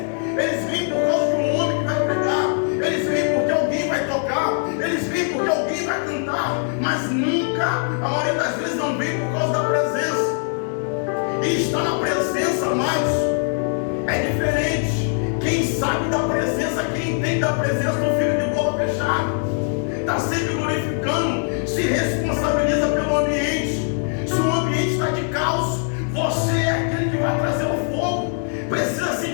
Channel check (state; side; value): silent; right; 55 dB below the other